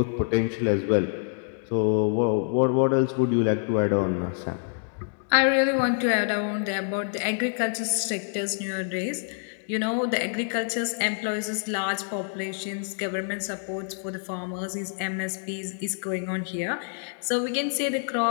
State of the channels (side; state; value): right; silent; 59 dB below the other